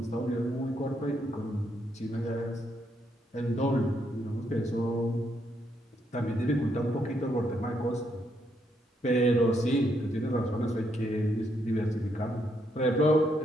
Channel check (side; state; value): both; normal; correlation 0.76